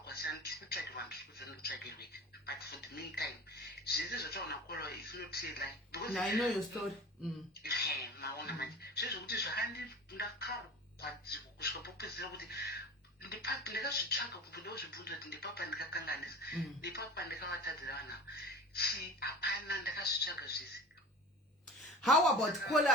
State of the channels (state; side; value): normal; both; correlation 0.36